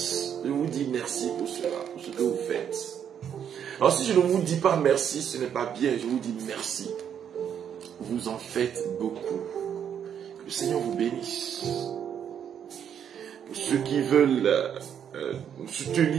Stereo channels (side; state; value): left; quieter; 8.6 dB